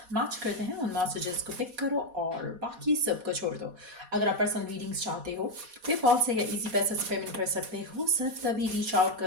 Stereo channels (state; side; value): late; left; 4.1 ms